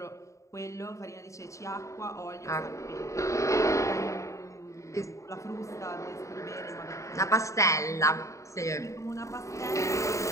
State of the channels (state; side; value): late; right; 0.15 ms